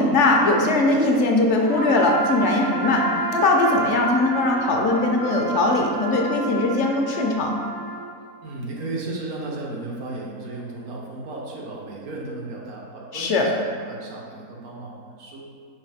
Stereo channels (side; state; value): left; late; 3.4 ms